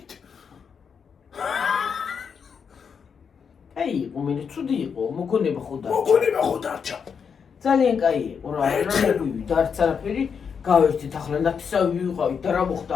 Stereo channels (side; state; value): right; quieter; 6.5 dB